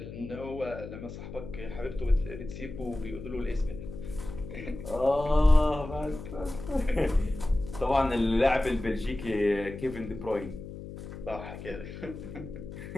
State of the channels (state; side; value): noise; left; hum, 11 dB below the sound